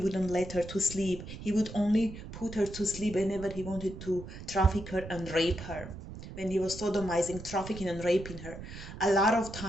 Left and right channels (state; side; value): noise; right; rumble, 11 dB below the sound